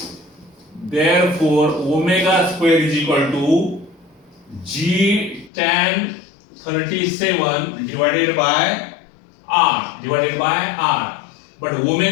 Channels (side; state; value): right; drops out; at 5.5 s